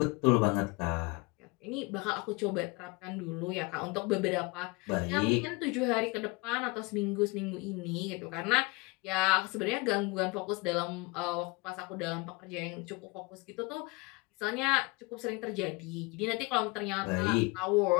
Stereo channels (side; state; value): right; quieter; 26.6 dB